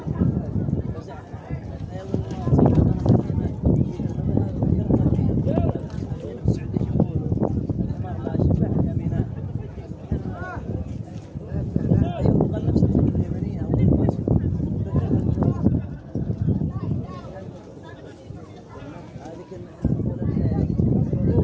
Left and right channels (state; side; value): identical; both; correlation 1.00